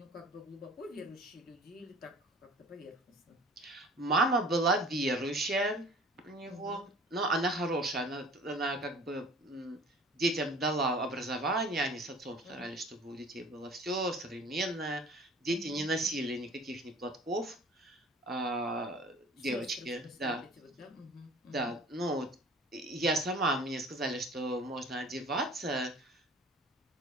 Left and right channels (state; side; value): normal; both; correlation 0.47